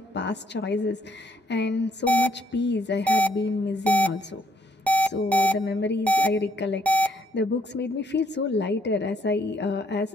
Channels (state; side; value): normal; both; correlation 0.69